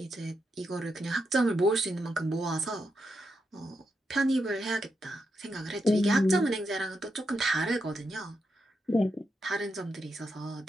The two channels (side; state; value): both; normal; correlation 0.84